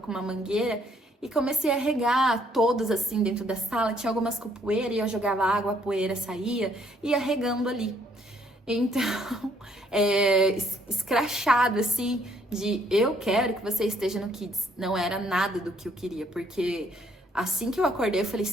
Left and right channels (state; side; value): normal; both; correlation 0.67